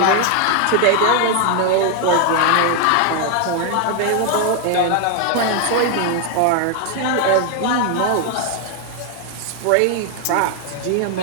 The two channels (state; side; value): different; both; correlation 0.00